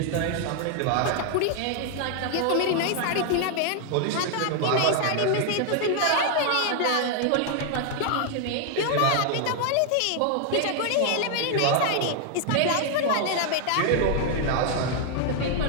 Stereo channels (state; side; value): different; both; correlation 0.00